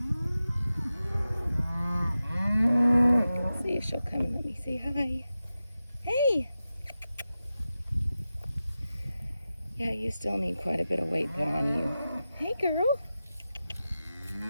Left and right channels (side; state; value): both; inverted; correlation -0.93